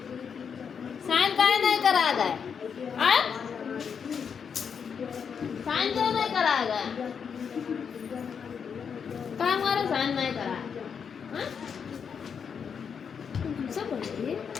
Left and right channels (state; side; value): quieter; right; 6.8 dB